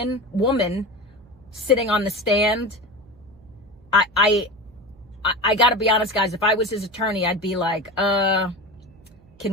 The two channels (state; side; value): noise; right; hum, 27 dB below the sound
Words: sitting on the stand, I gotta be honest, guys, if I was his attorney, I'd be like, can